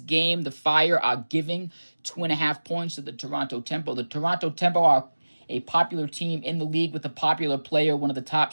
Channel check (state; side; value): inverted; both; correlation -1.00